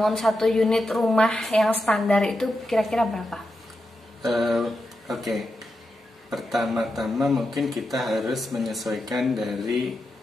satu unit rumah yang standar itu kira-kira berapa? Oke. Pertama-tama mungkin kita harus menyesuaikan dari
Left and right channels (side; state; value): both; normal; correlation 0.88